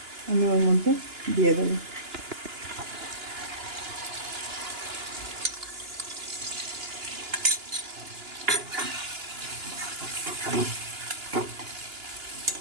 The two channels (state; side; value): late; left; 2.9 ms